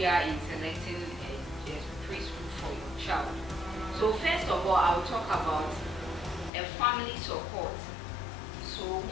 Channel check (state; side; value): drops out; right; at 6.5 s